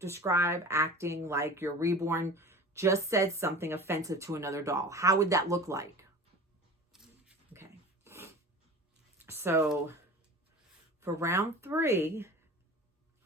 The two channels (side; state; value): both; normal; correlation 0.37